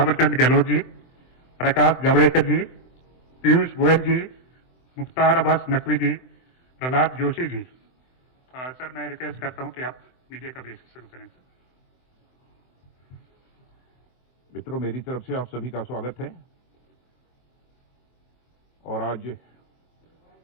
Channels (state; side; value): late; right; 23 ms